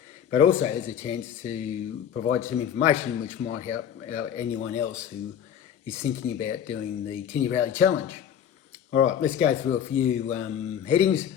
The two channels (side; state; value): right; quieter; 9.1 dB